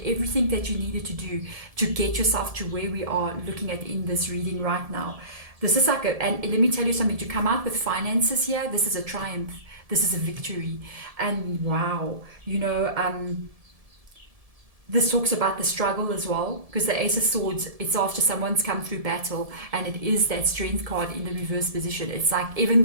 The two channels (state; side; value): late; left; 1.7 ms